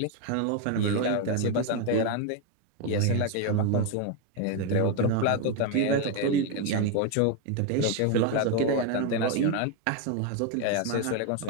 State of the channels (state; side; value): different; both; correlation 0.01